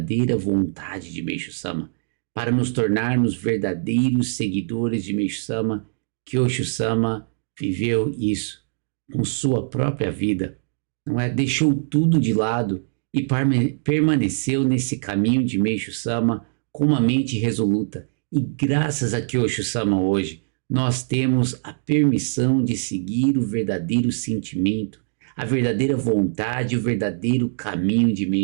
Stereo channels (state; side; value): silent; left; digital silence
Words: vontade de Meishu Sama, para nos tornarmos verdadeiros seguidores de Meishu Sama. Kyosho Sama viveu isso com sua própria vida, não é? Deixou tudo de lado e permaneceu nesse caminho de Meishu Sama com uma mente resoluta. E graças a Kyosho Sama hoje, nós temos a permissão de seguir o verdadeiro sentimento, a verdadeira vontade e o verdadeiro caminho de